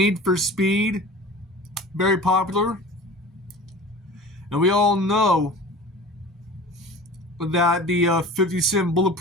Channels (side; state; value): both; normal; correlation 0.39